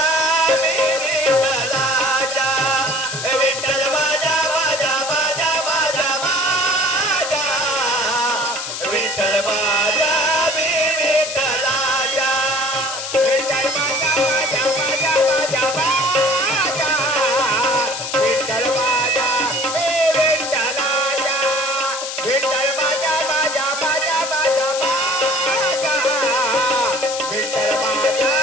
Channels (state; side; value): noise; left; hiss, 6 dB below the sound